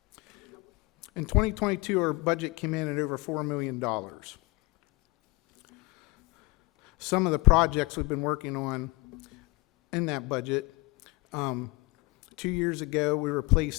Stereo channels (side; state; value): right; quieter; 25.7 dB